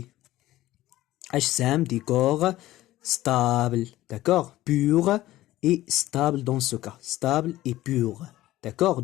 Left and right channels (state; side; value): quieter; right; 15.8 dB